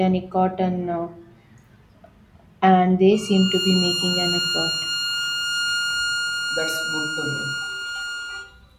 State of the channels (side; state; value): both; identical; correlation 1.00